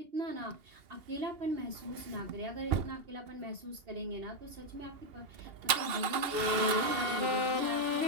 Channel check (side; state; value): left; late; 2.8 ms